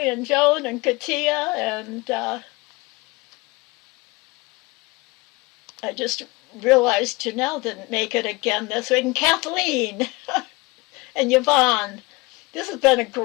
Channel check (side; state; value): right; quieter; 23.8 dB